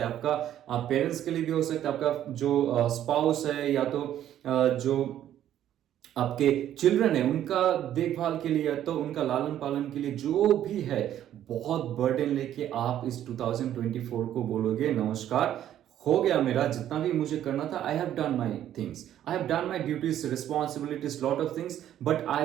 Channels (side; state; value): left; quieter; 11.4 dB